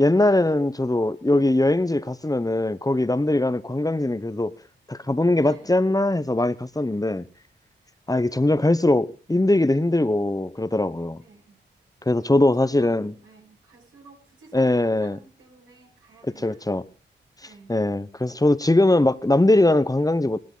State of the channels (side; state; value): both; normal; correlation 0.89